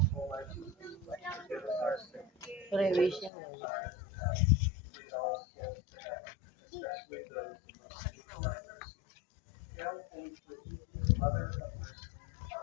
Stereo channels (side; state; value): right; drops out; at 3.3 s